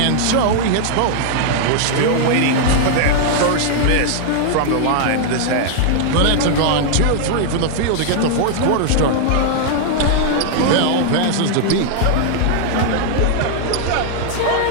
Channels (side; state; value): both; different; correlation -0.01